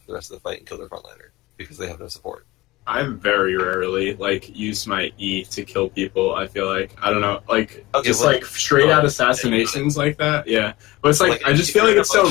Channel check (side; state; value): right; quieter; 19.6 dB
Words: for the rest of the fight and kill their frontliner because they have no support. I very rarely like use my E to kill people. I feel like I don't know, like just like straight out assassinations like that. Yeah, but it's like I just feel like it's so